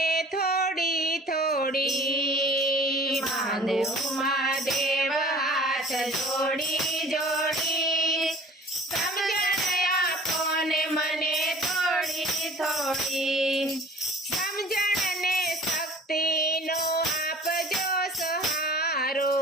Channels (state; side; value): normal; both; correlation 0.48